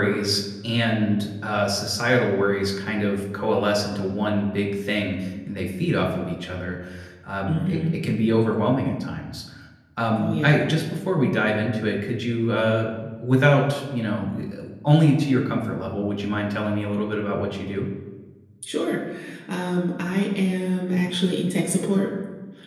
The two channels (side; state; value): both; identical; correlation 1.00